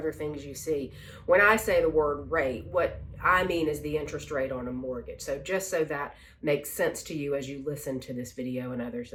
things you see. When I say the word rate, what I mean is the interest rate on a mortgage. So just so that makes sense to you as you listen to this video and others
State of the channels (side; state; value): both; identical; correlation 1.00